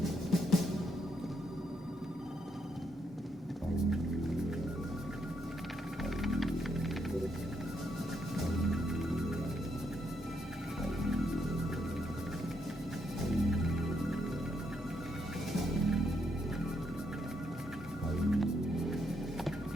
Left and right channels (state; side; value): normal; both; correlation 0.77